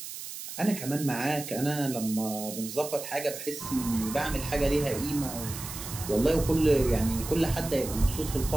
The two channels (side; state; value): right; noise; hiss, 9 dB below the sound